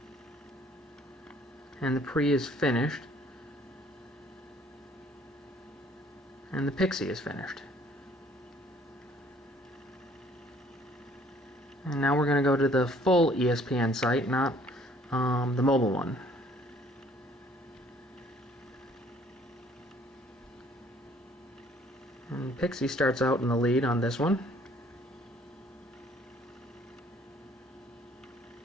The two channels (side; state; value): both; normal; correlation 0.59